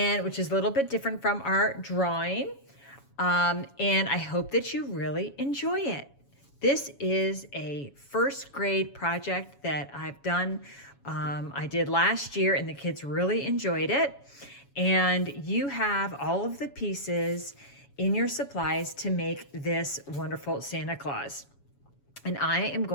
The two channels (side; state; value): right; late; 7.2 ms